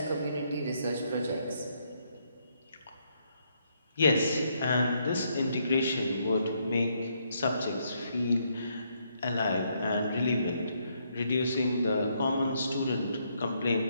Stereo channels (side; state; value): both; inverted; correlation -0.74